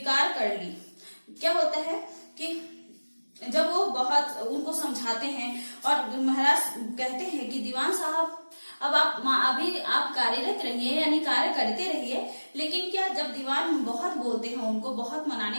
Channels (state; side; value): inverted; both; correlation -1.00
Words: कर ली। क्या होता है कि जब वो बहुत उनको समझाते हैं और महाराज कहते हैं कि दीवान साहब अब अभी आप कार्यरत रहिए यानी कार्य करते रहिए, लेकिन क्या जब दीवान बहुत बोलते हैं, उनको बहुत